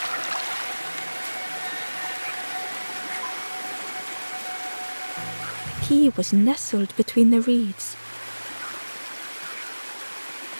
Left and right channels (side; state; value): both; inverted; correlation -1.00